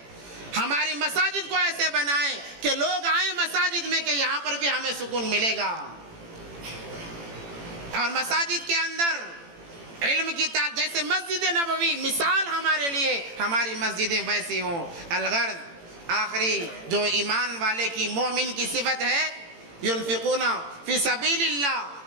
ہماری مساجد کو ایسے بنائیں کہ لوگ آئیں مساجد میں کہ یہاں پر بھی ہمیں سکون ملے گا، اور مساجد کے اندر علم کی جیسے مسجد نبوی مثال ہمارے لیے، ہماری مسجدیں ویسی ہوں۔ الغرض آخری جو ایمان والے کی، مومن کی صفت ہے، ينفقون فی سبیل اللہ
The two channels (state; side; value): late; left; 18 ms